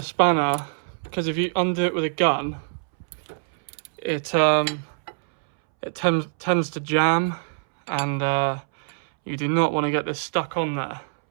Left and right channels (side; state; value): left; silent; 63 dB below the other